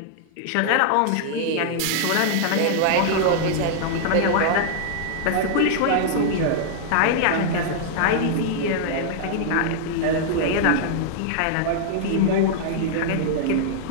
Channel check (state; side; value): different; both; correlation -0.01